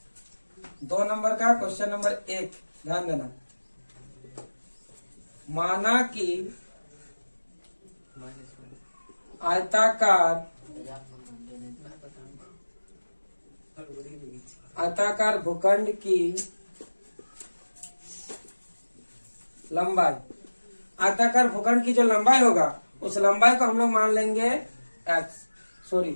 2 नंबर का क्वेश्चन नंबर 1 ध्यान देना। माना कि आयताकार भूखंड की लंबाई, आयताकार भूखंड की जो लंबाई होगा उस लंबाई को हम लोग मान लेंगे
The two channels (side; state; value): both; inverted; correlation -1.00